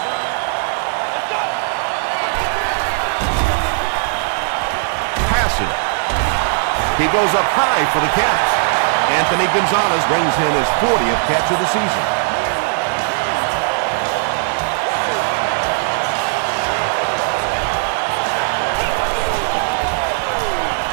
Passes. He goes up high for the catch. Anthony Gonzalez brings in his 40th catch of the season.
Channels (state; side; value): silent; left; 58 dB below the other